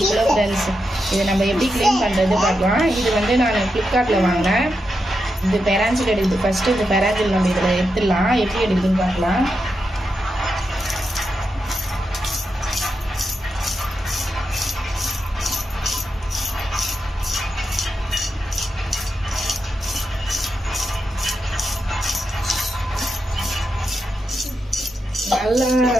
கிலோ ஃப்ரெண்ட்ஸ். இதை நம்ம எப்படி க்ளீன் பண்ணுறது பார்க்கலாம். இது வந்து நான் ஃப்ளிப்கார்ட்டில் வாங்கினேன். இது பெராஞ்சில் எடுக்குது. ஃபஸ்ட்டு இந்த பெராஞ்சில் நம்ம இதில் எடுத்துடலாம். எப்படி எடுக்குதுன்னு பார்க்கலாம். நல்லா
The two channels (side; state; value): both; normal; correlation 0.86